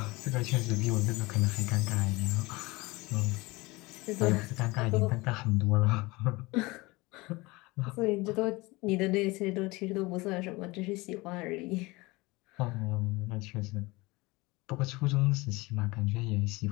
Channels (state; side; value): quieter; right; 22.9 dB